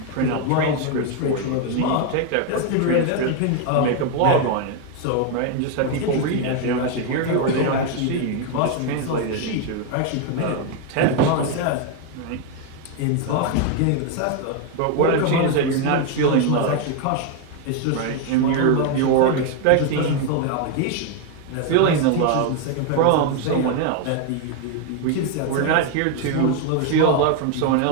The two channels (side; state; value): both; different; correlation 0.01